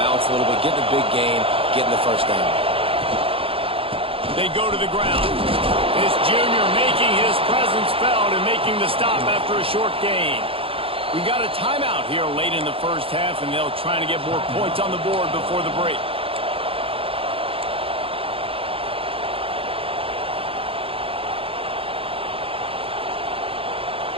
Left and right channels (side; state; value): left; late; 0.27 ms